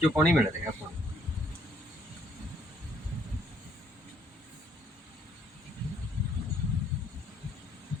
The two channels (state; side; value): normal; both; correlation 0.66